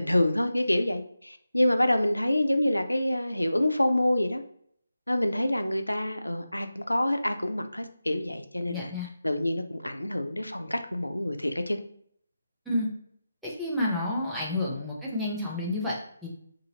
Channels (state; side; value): inverted; both; correlation -0.91